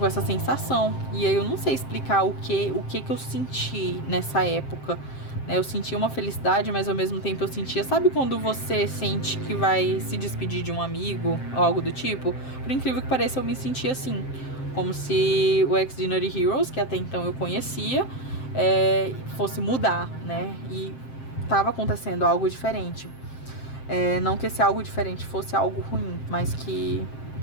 essa sensação. E aí eu não sei explicar o que eu senti nessa época. Eu sentia uma felicidade, mas ao mesmo tempo eu sentia... Sabe quando você sente que vai se despedir de um amigo ou algo do tipo? Por incrível que pareça, eu me sentia assim. Como se o Extraordinary Heroes, que até então eu conhecia, fosse mudar, né? E tava acontecendo algo diferente. Não que esse algo diferente fosse algo ruim, mas que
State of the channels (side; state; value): right; late; 7.6 ms